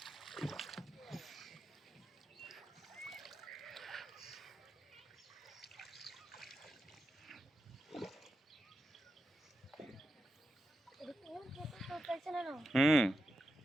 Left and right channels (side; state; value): both; normal; correlation 0.87